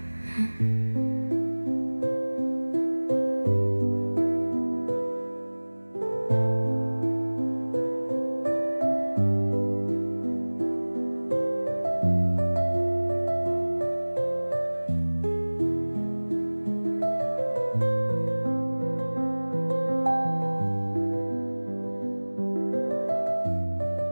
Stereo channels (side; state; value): both; inverted; correlation -1.00